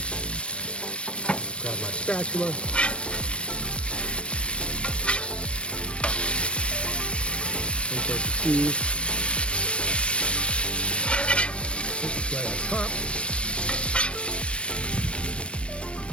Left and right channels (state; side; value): late; right; 0.059 ms